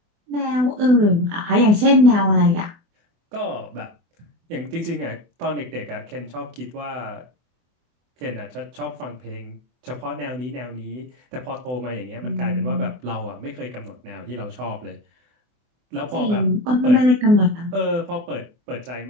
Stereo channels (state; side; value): late; left; 24 ms